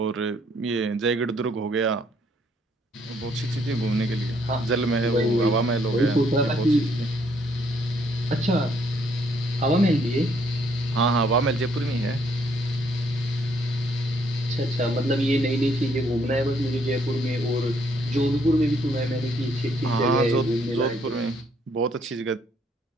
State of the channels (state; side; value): normal; both; correlation 0.68